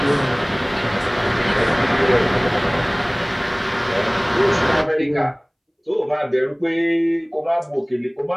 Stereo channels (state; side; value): identical; both; correlation 1.00